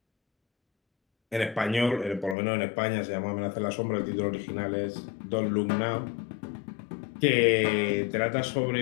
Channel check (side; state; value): right; drops out; at 2.4 s